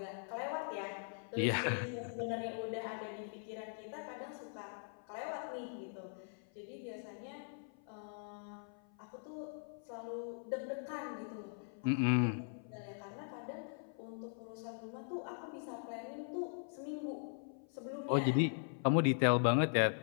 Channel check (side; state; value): right; silent; 51 dB below the other